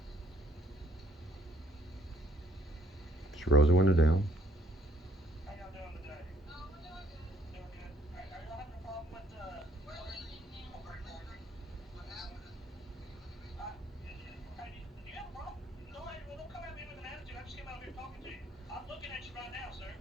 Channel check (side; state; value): both; normal; correlation 0.65